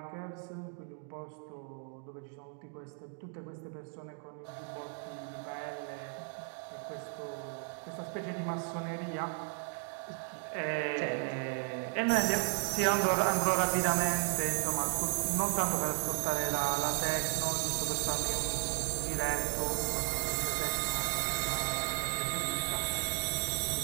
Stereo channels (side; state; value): left; quieter; 37.9 dB